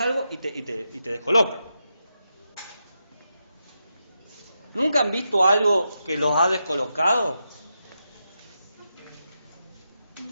algo y te descoloca. ¿Nunca han visto algo que los ha descolocado?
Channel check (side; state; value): both; inverted; correlation -0.86